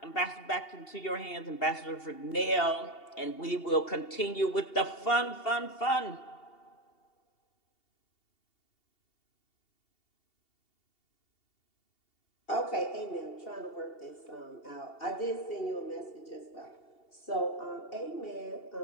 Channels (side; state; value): right; late; 2.7 ms